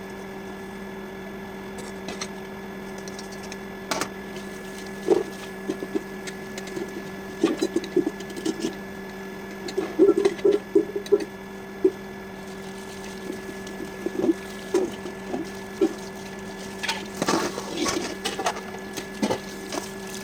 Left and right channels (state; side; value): identical; both; correlation 1.00